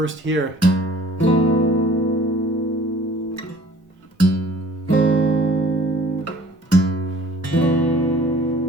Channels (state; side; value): normal; both; correlation 0.50